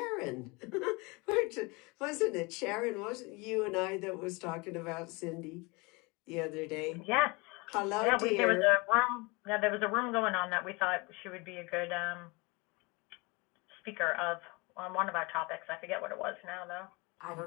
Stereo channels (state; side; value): quieter; right; 26.7 dB